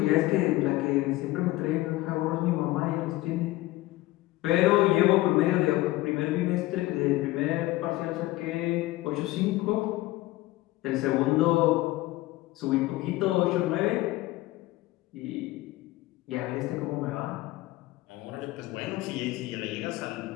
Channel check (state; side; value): quieter; right; 18.1 dB